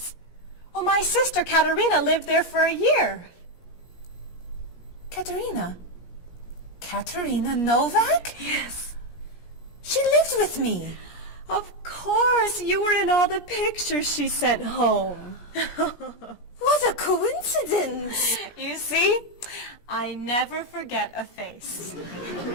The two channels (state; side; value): late; right; 17 ms